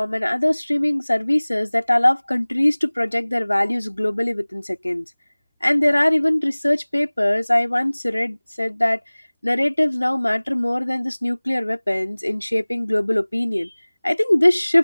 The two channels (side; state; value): both; inverted; correlation -1.00